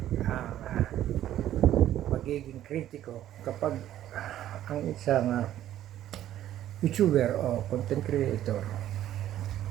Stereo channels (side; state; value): left; quieter; 12.3 dB